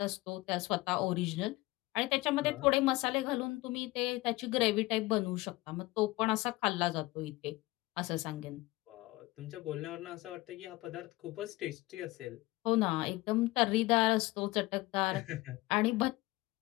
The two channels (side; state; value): right; quieter; 20.2 dB